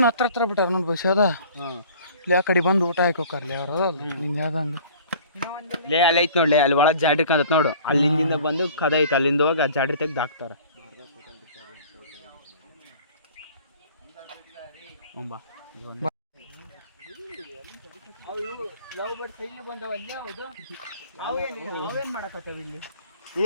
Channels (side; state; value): both; inverted; correlation -0.48